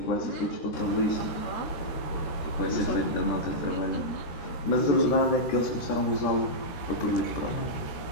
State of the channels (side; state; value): right; late; 13 ms